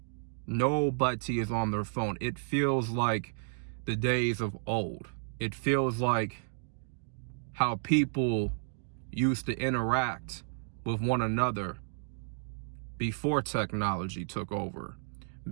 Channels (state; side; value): silent; left; digital silence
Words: Nobody is on their phone. It feels like the days of old. It feels like how people used to interact with one another before technology took over,